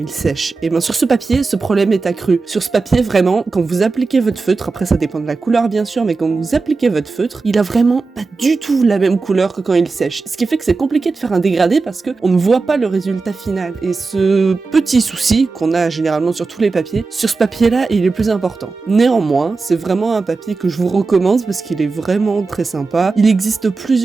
sèchent. Et bien sur ce papier, ce problème est accru. Sur ce papier, vraiment, quand vous appliquez votre feutre, après ça dépend de la couleur bien sûr, mais quand vous appliquez votre feutre, il a vraiment pas du tout la même couleur que quand il sèche. Ce qui fait que c'est compliqué de faire un dégradé parce que on ne voit pas le résultat final. Et ce petit souci qu'on a généralement sur tous les papiers, sur ce papier-là, il est plus important. Néanmoins, c'est vraiment un papier que je vous recommande parce qu'il est vraiment très sympa. Il existe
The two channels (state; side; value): quieter; left; 4.1 dB